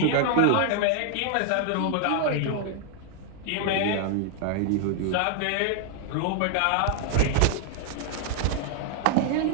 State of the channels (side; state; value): both; different; correlation 0.00